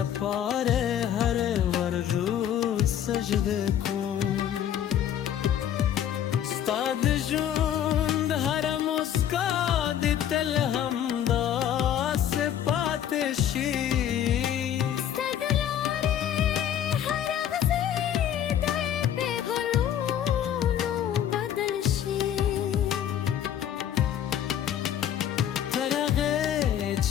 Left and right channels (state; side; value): quieter; right; 10.1 dB